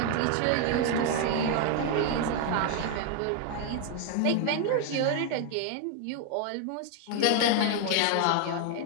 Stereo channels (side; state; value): both; different; correlation 0.00